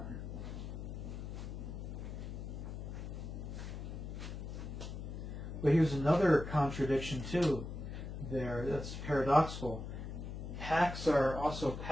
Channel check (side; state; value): left; noise; hum, 7 dB below the sound